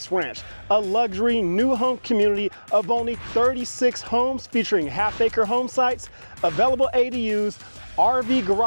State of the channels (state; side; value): inverted; both; correlation -1.00